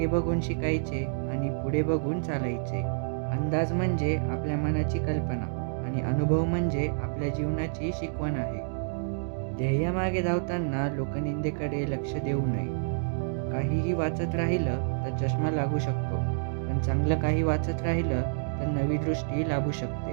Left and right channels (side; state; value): left; silent; digital silence